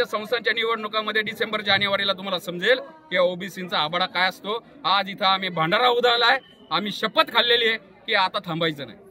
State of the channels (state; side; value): identical; both; correlation 1.00